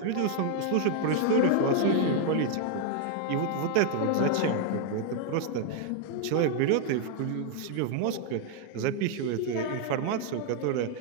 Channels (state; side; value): different; both; correlation 0.00